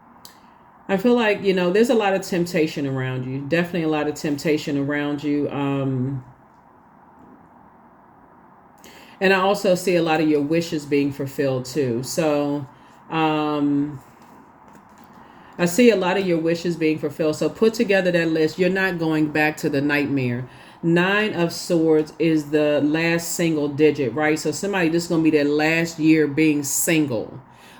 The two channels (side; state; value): both; identical; correlation 1.00